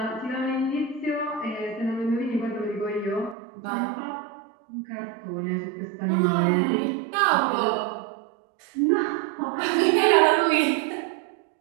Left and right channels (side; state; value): left; drops out; at 3.4 s